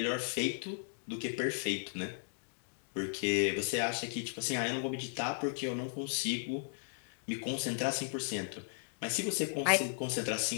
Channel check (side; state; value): right; silent; digital silence